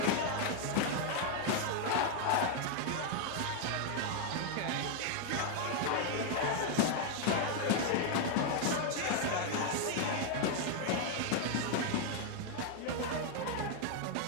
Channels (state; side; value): different; both; correlation 0.00